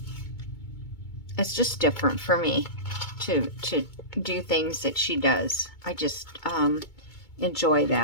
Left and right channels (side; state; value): right; late; 2.2 ms